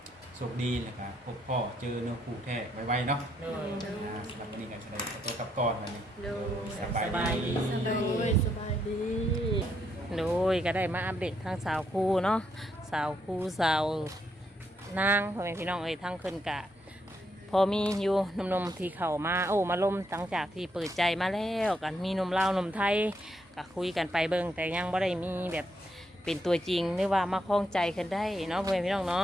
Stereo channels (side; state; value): both; normal; correlation 0.77